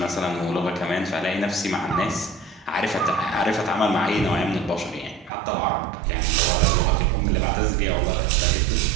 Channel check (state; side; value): drops out; left; at 5.3 s